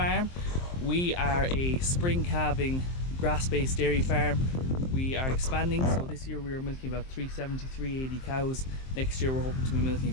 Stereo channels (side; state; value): right; late; 23 ms